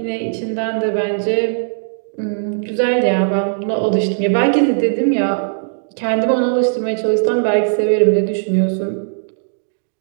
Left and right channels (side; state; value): left; silent; digital silence